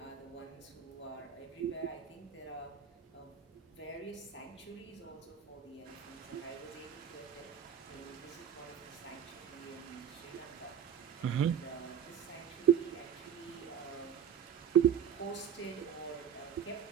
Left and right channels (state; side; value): quieter; left; 8.6 dB